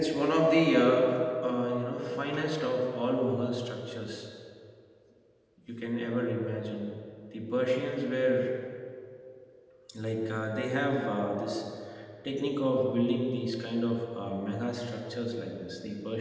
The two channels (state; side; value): identical; both; correlation 1.00